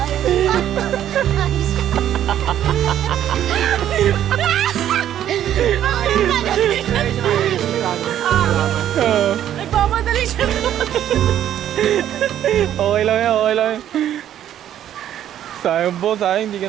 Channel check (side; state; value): left; quieter; 11.0 dB